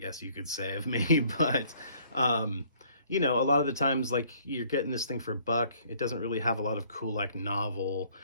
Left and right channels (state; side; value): inverted; both; correlation -0.60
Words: you could say, of me, but a lot of the times, like, you're getting this thing for a buck. It doesn't really have a lot of cool, like, novel,